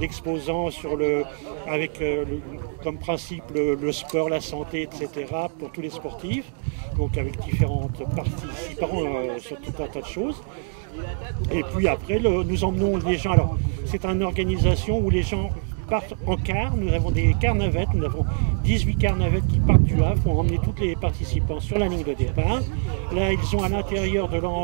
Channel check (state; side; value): silent; left; 62 dB below the other